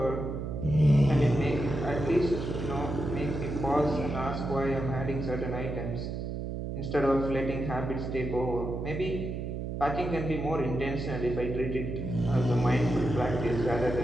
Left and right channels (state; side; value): noise; right; hum, 4 dB below the sound